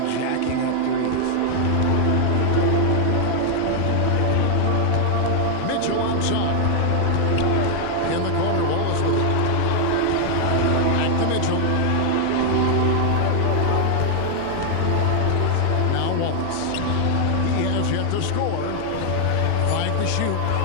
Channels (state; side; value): different; both; correlation 0.00